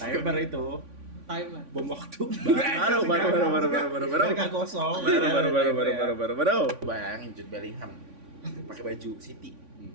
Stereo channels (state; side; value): late; left; 3.5 ms